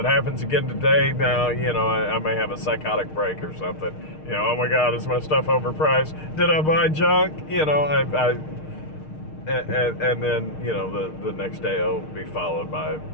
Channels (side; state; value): right; late; 6.5 ms